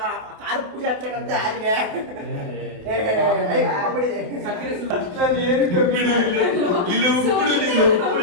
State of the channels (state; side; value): late; left; 28 ms